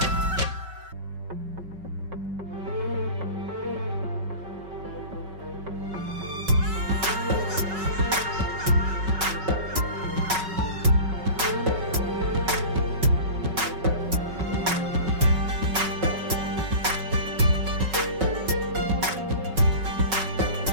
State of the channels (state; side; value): late; left; 5.3 ms